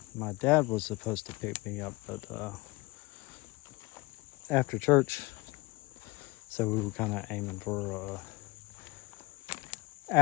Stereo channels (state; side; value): quieter; right; 23.0 dB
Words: my dad was supposed to pick me up, but after church, so we were kind of aiming for